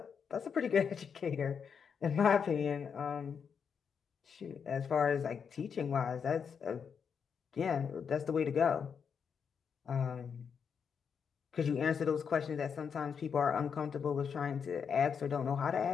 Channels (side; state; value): right; quieter; 6.7 dB